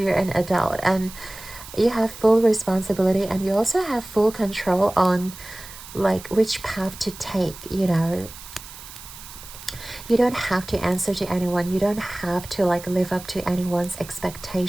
an adult and you have full responsibility, and you also have full control on like which path to take, you know. You don't have to answer to anyone. You don't have to like live up to anyone's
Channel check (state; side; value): noise; right; hiss, 16 dB below the sound